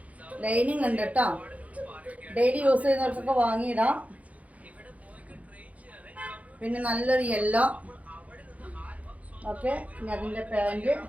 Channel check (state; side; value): late; left; 0.069 ms